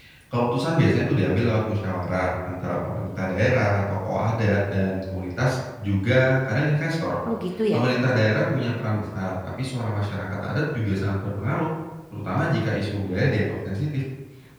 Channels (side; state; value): both; identical; correlation 1.00